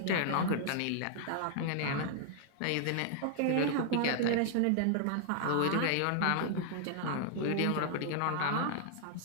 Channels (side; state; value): both; different; correlation -0.01